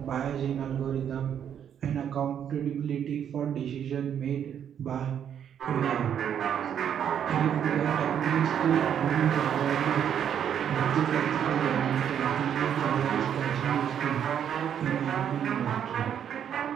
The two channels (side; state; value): left; quieter; 8.9 dB